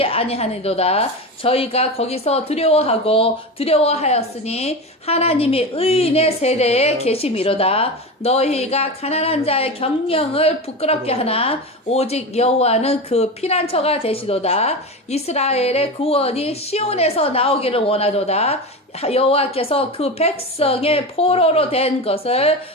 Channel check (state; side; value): normal; both; correlation 0.23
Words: 아니하니도다. 저희가 거기서 두려워하였으니 하나님이 의인의 세대에 계심이로다. 너희가 가난한 자의 경영을 부끄럽게 하나 오직 여호와는 그 피난처가 되시도다. 이스라엘의 구원이 시온에서 나오기를 원하도다. 여호와께서 그 백성의 포로로 된 것을